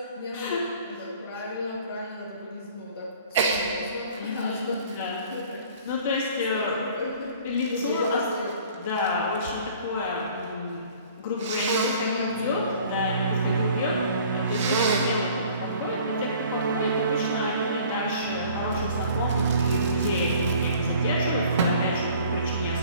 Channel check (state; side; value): inverted; both; correlation -0.51